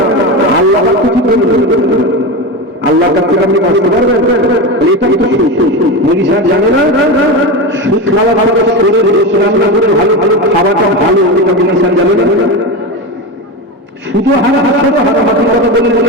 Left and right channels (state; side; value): normal; both; correlation 0.20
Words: না। আল্লাহ কিছু বলবেন, আল্লাহর কাছ থেকে আপনি বাঁচতে পারবেন? এটাই তো মুড়ি সাহেব জানে না সুদ খাওয়া ভালো, শরীর রান্না করে ভালো ভালো খাওয়াটা ভালো, এটা মুড়ি সাহেব জানে না। শুধু হারাম হারামাতির কথা বলে